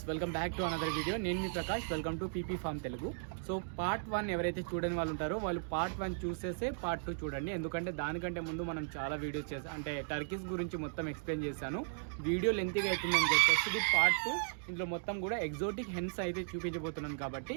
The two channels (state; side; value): silent; left; digital silence